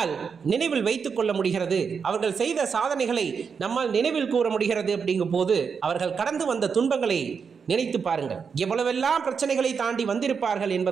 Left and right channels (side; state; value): left; quieter; 6.0 dB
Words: நினைவில் வைத்துக் கொள்ள முடிகிறது. அவர்கள் செய்த சாதனைகளை நம்மால் நினைவில் கூற முடிகிறது. அப்படிங்கும் போது அவர்கள் கடந்து வந்த துன்பங்களை நினைத்து பாருங்கள். எவ்வளவெல்லாம் பிரச்சனைகளை தாண்டி வந்திருப்பார்கள்